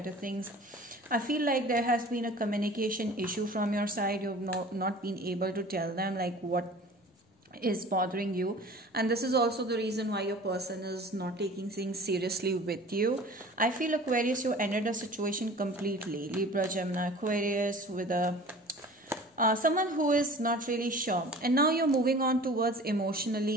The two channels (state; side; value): normal; both; correlation 0.43